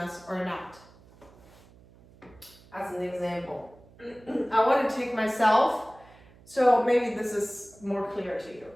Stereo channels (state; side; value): noise; right; hum, 25 dB below the sound